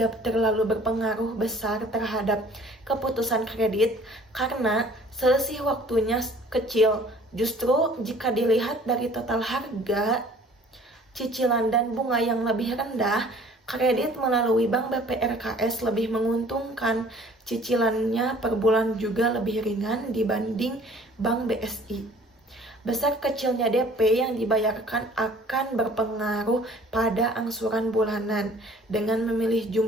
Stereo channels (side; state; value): both; normal; correlation 0.52